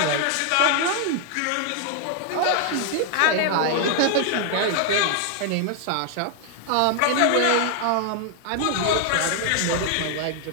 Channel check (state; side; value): different; both; correlation 0.00